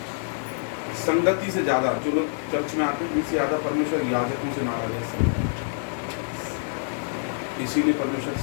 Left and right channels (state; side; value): silent; right; 61 dB below the other